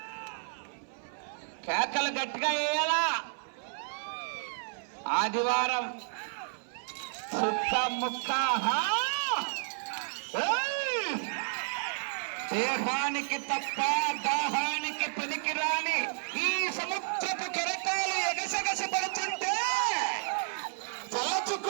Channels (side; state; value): left; silent; 57 dB below the other